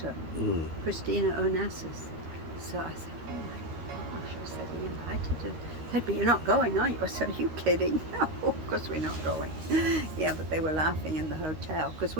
Christina Onassis. So I said, oh my gosh. I said, he invited her. Said, but you're not going, are you? I said, are you kidding? No, of course we're not going. Yeah, but they were laughing in the hotel because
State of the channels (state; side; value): late; left; 13 ms